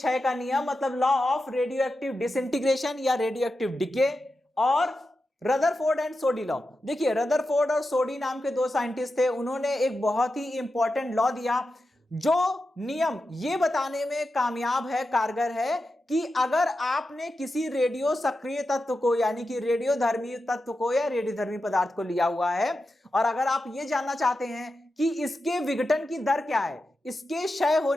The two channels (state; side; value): normal; both; correlation 0.90